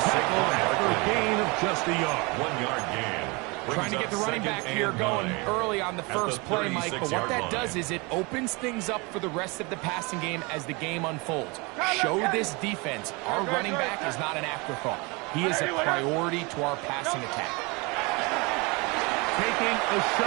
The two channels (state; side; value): quieter; left; 27.5 dB